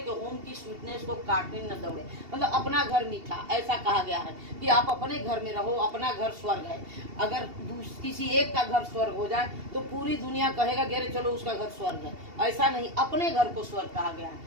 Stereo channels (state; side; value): late; left; 2.7 ms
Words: होम की स्वीटनेस को काटने न दौड़े। मतलब अपना घर मीठा, ऐसा कहा गया है कि आप अपने घर में रहो, अपना घर स्वर्ग है। अगर किसी एक का घर स्वर्ग हो जाए तो पूरी दुनिया कहेगा कि अरे चलो उसका घर स्वर्ग है। ऐसा नहीं, अपने घर को स्वर्ग कहा गया